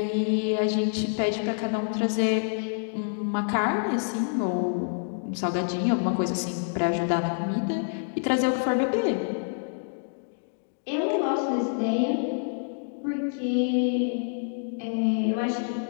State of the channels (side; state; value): right; silent; digital silence